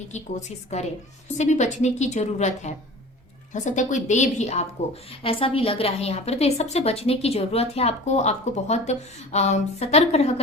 की कोशिश करे, उससे भी बचने की जरूरत है। हो सकता है कोई दे भी आपको, ऐसा भी लग रहा है यहाँ पर। तो ये सबसे बचने की जरूरत है आपको। आपको बहुत सतर्क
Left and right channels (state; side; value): normal; both; correlation 0.40